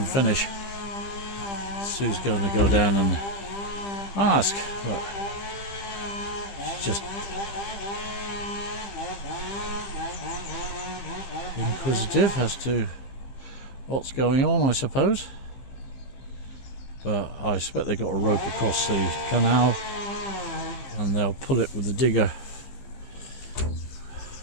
finish. Sue's going to go down and ask, but she's just inquisitive as to what's going on, I suppose. But I expect they've got a rope across the canal and they'll pull it with the digger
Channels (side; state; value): right; late; 15 ms